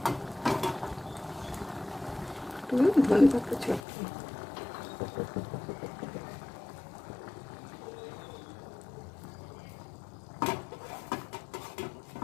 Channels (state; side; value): drops out; right; at 3.8 s